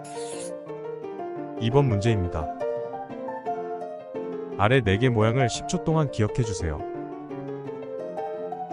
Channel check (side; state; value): both; identical; correlation 1.00